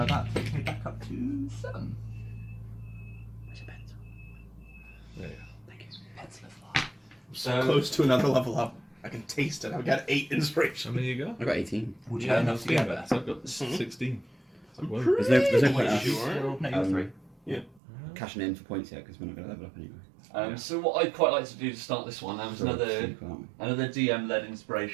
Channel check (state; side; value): drops out; left; at 17.8 s